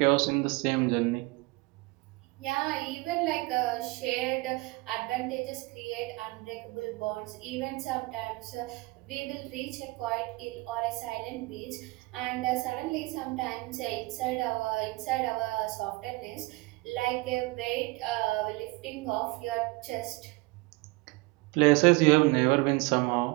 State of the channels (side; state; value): left; quieter; 23.4 dB